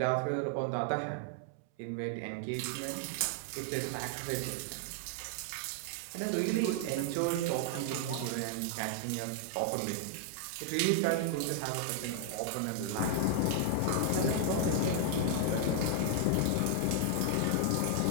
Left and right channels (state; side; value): different; both; correlation 0.00